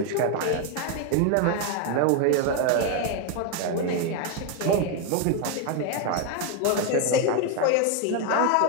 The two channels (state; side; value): different; both; correlation 0.01